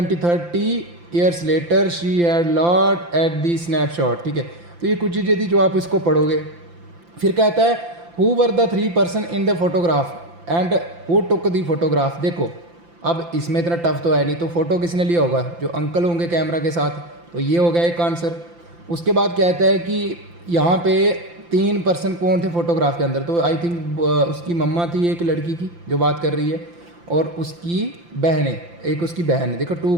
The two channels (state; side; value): late; left; 5.8 ms